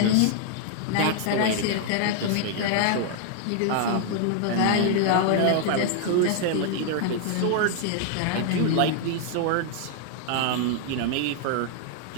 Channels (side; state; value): both; different; correlation 0.00